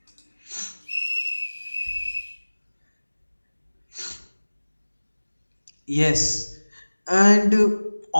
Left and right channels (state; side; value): inverted; both; correlation -1.00